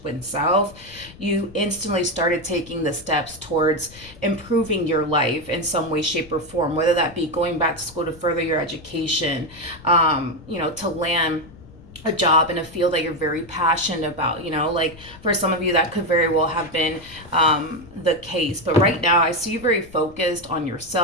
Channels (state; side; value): noise; left; rumble, 20 dB below the sound